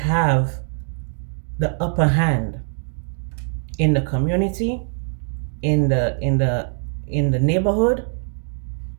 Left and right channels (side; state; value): left; silent; 58 dB below the other